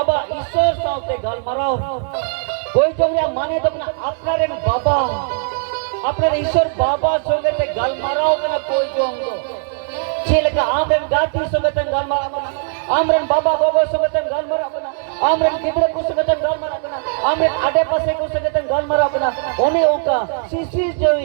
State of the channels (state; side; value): silent; left; digital silence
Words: ईश्वर साथे गाल मराओ कोई जोंग या माने तो अपना रेन बाबा अपना ईश्वर बाबा सोगे ते गाल मराओ कना कोई जोंग दो छेल का आमरेन गाती सोगे ते गाल मराओ आमरेन बाबा गोगो सोगे ते गाल मराओ कना आमरेन किबरे को सोगे ते गाल मराओ कना आमरेन आडे पासे को सोगे ते गाल मराओ कना ओने ओका सीसी